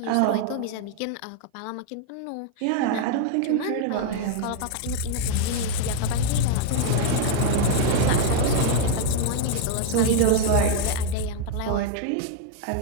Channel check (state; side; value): different; both; correlation 0.00